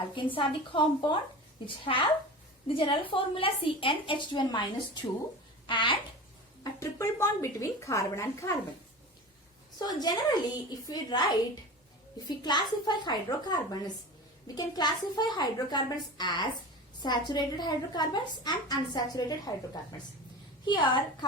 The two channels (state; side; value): normal; both; correlation 0.32